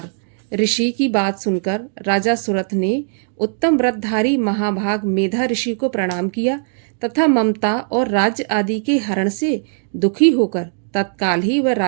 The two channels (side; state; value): left; silent; digital silence